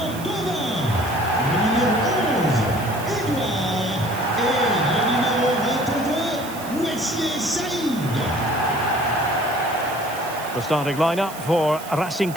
The starting lineup for Racing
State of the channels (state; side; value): noise; right; hiss, 15 dB below the sound